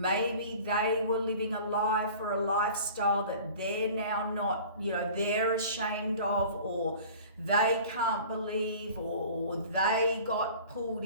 they were living a life or a lifestyle that they're now not, they're ashamed of, or they can't believe, or they got pulled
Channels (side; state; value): both; inverted; correlation -0.44